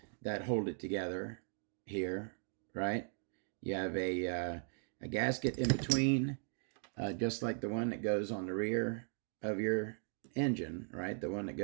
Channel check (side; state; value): left; silent; 52 dB below the other